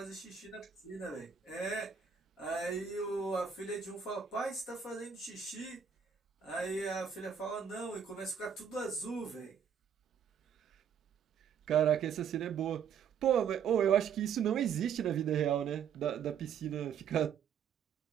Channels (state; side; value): quieter; left; 7.6 dB